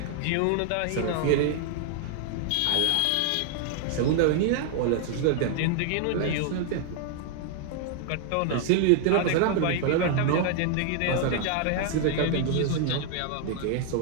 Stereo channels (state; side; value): different; both; correlation 0.00